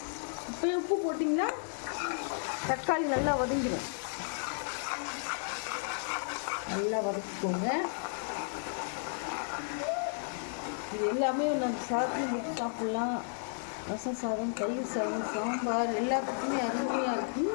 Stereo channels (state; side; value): silent; right; digital silence